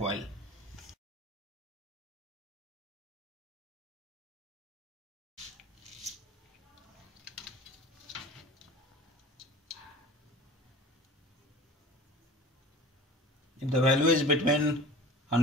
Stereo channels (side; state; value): both; normal; correlation 0.39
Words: If the value is between